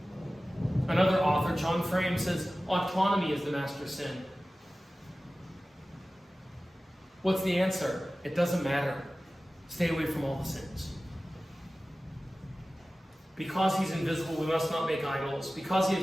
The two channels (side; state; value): both; normal; correlation 0.96